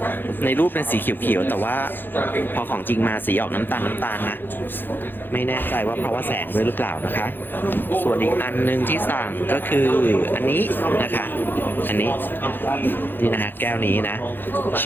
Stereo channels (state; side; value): late; right; 0.096 ms